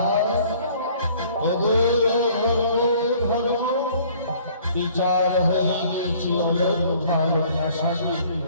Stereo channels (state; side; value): inverted; both; correlation -0.55